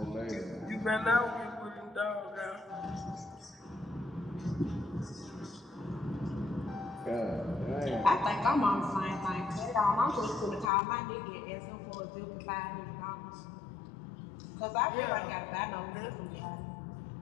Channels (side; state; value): right; drops out; at 10.7 s